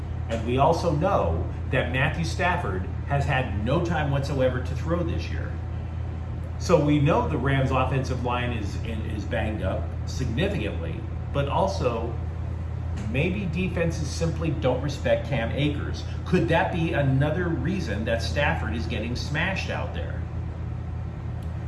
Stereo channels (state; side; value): identical; both; correlation 1.00